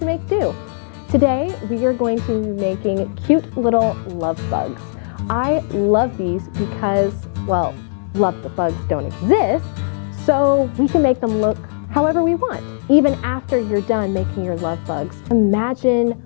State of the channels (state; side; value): silent; right; digital silence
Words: Make.Do. Today, we are going to be making cute little love bugs. I love these because, well, love bugs don't exist, so we can make them look however we want. Even after you're done making your love bugs, imagine